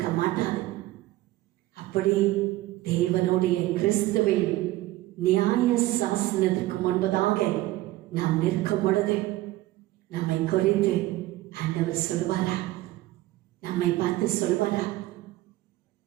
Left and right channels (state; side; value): quieter; left; 17.1 dB